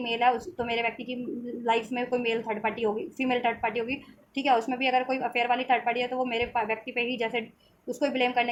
मेल है, तो मेरे व्यक्ति की लाइफ में कोई मेल थर्ड पार्टी होगी, फीमेल थर्ड पार्टी होगी, ठीक है। उसमें भी अगर कोई अफेयर वाली थर्ड पार्टी है तो वो मेरे व्यक्ति पे ही जैसे उसको ही ब्लेम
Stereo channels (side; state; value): both; identical; correlation 1.00